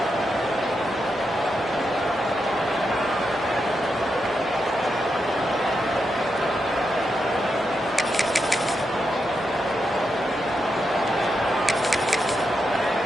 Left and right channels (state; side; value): normal; both; correlation 0.85